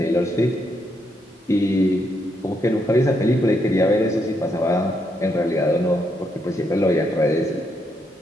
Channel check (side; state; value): both; normal; correlation 0.78